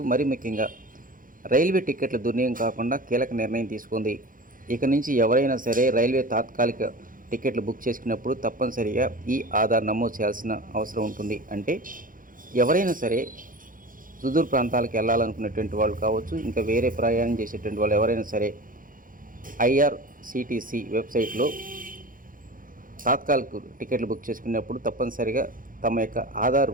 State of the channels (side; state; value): left; late; 0.40 ms